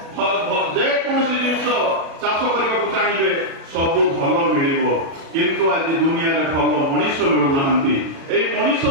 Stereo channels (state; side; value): late; left; 36 ms